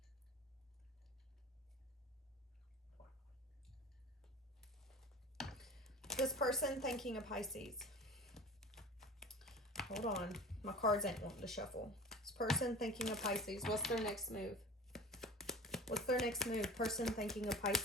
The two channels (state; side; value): normal; both; correlation 0.38